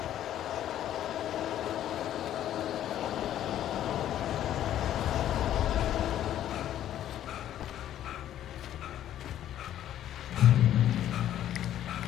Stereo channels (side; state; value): right; quieter; 11.6 dB